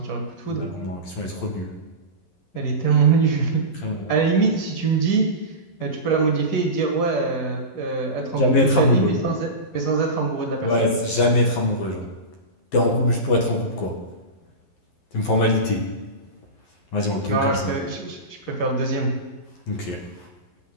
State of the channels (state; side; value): late; right; 11 ms